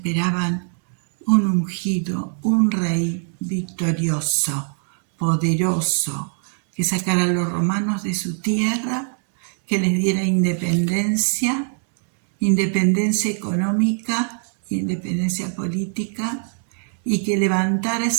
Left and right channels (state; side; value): silent; left; 57 dB below the other